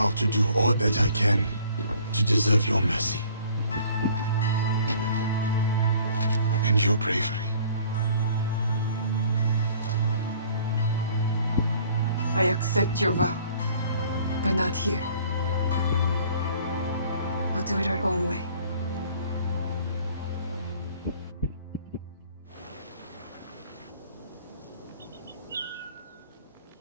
to do all that I can to deserve your mercy. And your bravery. I accept your vow, but not here. We'll do it our own way.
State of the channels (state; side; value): inverted; both; correlation -0.54